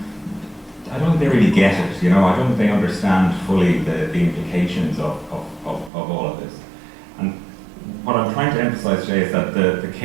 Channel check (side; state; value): left; drops out; at 5.9 s